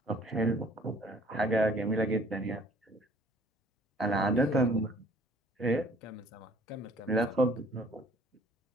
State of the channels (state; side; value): normal; both; correlation 0.56